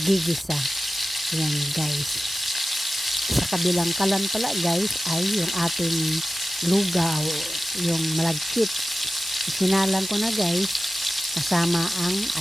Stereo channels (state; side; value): normal; both; correlation 0.95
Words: Ayan guys. Sa kabilang kalan pala guys ay yung ating lugaw, yung malagkit. Sinalang ko na guys, kasama ang